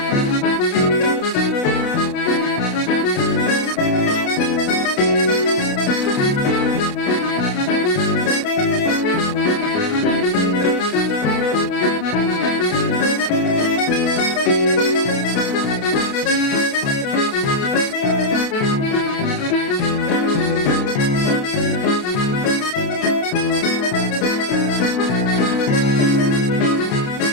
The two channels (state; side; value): late; right; 28 ms